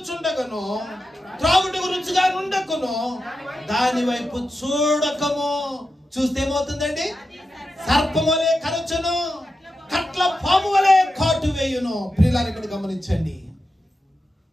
త్రాగుటకు రుచిగా ఉండకును, దాని వైపు చూడకము. చూస్తే ఏమవుతుందండి? సర్పము వలె కరచును, కట్ల పాము వలె కాటు వేయును. ప్రియులారా ఇక్కడ గమనించండి,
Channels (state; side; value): normal; both; correlation 0.89